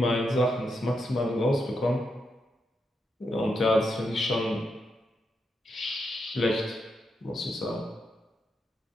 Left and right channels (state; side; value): normal; both; correlation 0.83